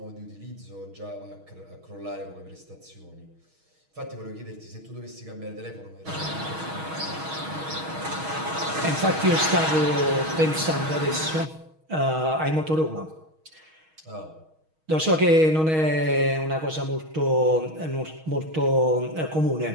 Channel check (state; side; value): late; left; 6.3 ms